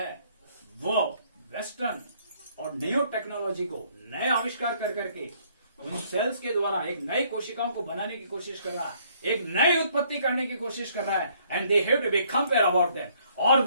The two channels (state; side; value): inverted; both; correlation -0.64